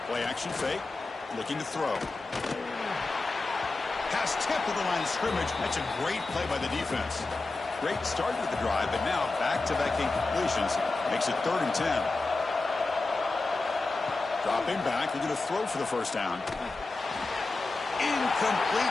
Play action fake. Looking to throw. Pass tipped to the line of scrimmage. That's a great play by the defense. Great start with the drive, but now back-to-back incompletions makes it 3rd and 10. Dropping back, looking to throw for the first down.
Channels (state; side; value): quieter; right; 3.4 dB